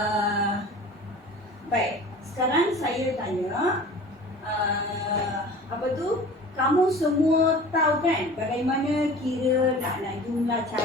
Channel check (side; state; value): both; normal; correlation 0.41